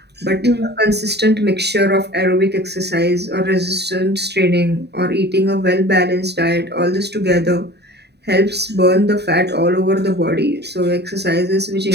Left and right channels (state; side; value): late; left; 0.48 ms